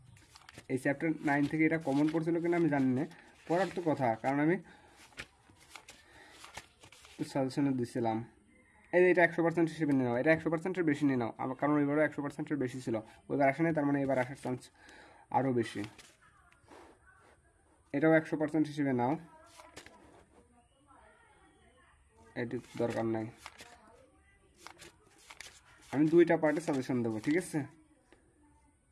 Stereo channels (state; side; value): identical; both; correlation 1.00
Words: এই চ্যাপ্টার 9 থেকে এটা কমন পড়ছিল কিনা আমি জানি না, পড়ার তো কথা, কারণ আমি সাজেশনে দিছিলাম। এটা 100% হিসেবে নিয়ে নাও, এটা 100%-এর বেশি নিয়ে নাও, কারণ এবারও 100%-এর বেশি ছিল, ওইবার আসে নাই, তার মানে এবার আসার চান্স আরও বেশি। এটাও 100% হিসেবে নাও, এটি দরকার নাই। আমি দুইটা পার্টে সাজেশন দেবো, ঠিক আছে,